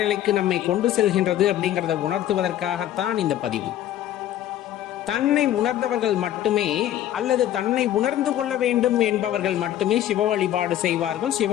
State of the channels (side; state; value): right; quieter; 12.1 dB